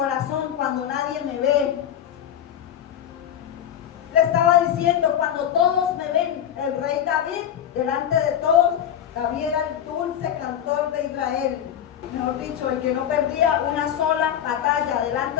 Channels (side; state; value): right; quieter; 9.8 dB